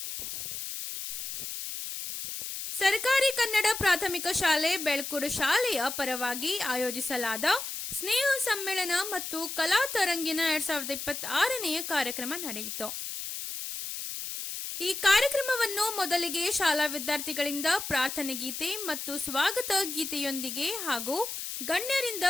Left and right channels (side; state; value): left; noise; hiss, 6 dB below the sound